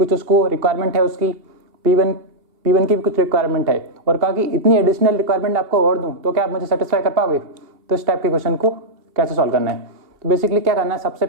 उसको रिक्वायरमेंट है उसकी, P1 की भी कुछ रिक्वायरमेंट है और कहा कि इतनी एडिशनल रिक्वायरमेंट आपको और दूं तो क्या आप मुझे सेटिस्फाई कर पाओगे? तो इस टाइप के क्वेश्चन को कैसे सॉल्व करना है? तो बेसिकली क्या करना है, सबसे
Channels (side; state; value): left; late; 2.7 ms